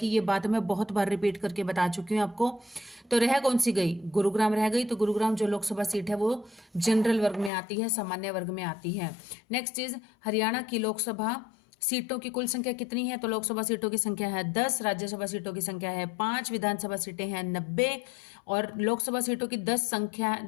ये बात मैं बहुत बार रिपीट करके बता चुकी हूँ आपको। तो रह कौन सी गई? गुरुग्राम रह गई। तो गुरुग्राम जो लोकसभा सीट है वो जनरल वर्ग में आती है, सामान्य वर्ग में आती है। नेक्स्ट इज हरियाणा की लोकसभा सीटों की कुल संख्या कितनी है? तो लोकसभा सीटों की संख्या है 10, राज्यसभा सीटों की संख्या है 5, विधानसभा सीटें हैं 90 और लोकसभा सीटों की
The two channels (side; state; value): right; drops out; at 7.5 s